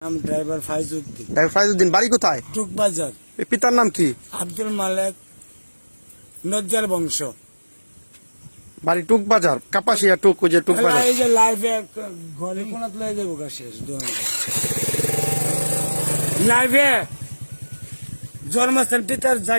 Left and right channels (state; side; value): inverted; both; correlation -1.00